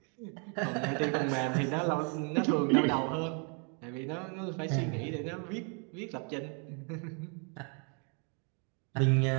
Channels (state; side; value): quieter; left; 37.8 dB